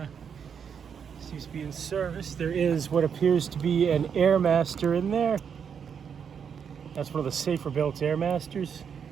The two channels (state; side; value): quieter; left; 7.2 dB